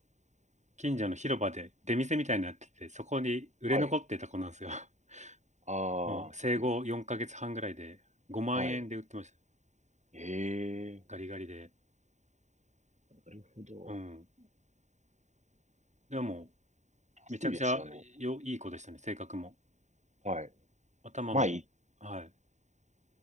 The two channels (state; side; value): late; left; 0.34 ms